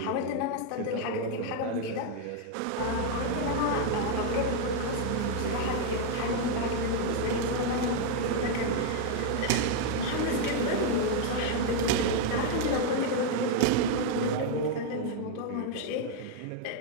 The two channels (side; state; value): both; different; correlation 0.00